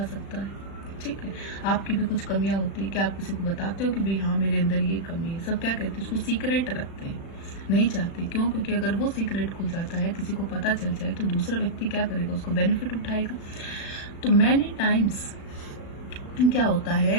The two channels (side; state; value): right; late; 36 ms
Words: सकता है। ठीक है, आपकी भी कुछ कमियां होती है, क्या आप किसी को बताते हो कि भाई हाँ मेरे अंदर ये कमी है? सब क्या कहते हैं, उसको सीक्रेट रखते हैं, नहीं चाहते। क्यों? क्योंकि अगर वो सीक्रेट खुल जाता है, किसी को पता चल जाए, तो दूसरा व्यक्ति क्या करेगा, उसको बेनिफिट उठाएगा। तो मैनी टाइम्स क्या होता है